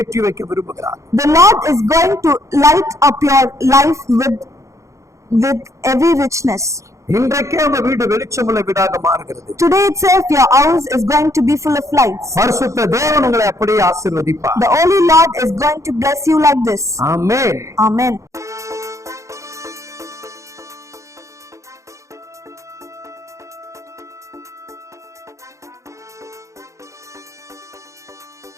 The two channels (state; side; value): late; left; 0.15 ms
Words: வைக்க விரும்புகிறார். The Lord is going to light up your life with every richness. இன்றைக்கே உங்க வீடு வெளிச்சமுள்ள வீடாக மாறுகிறது. Today itself your house is going to be full of lights. பரிசுத்த தேவன் உங்களை அப்படியே ஆசீர்வதிப்பார். The Holy Lord is going to bless you like this. Amen. Amen.